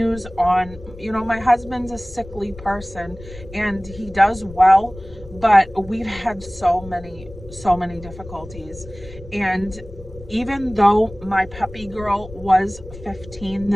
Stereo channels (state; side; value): noise; left; rumble, 16 dB below the sound